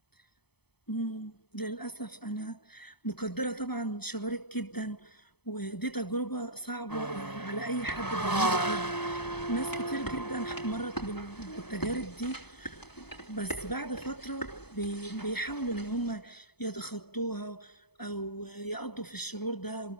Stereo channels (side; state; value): right; late; 0.98 ms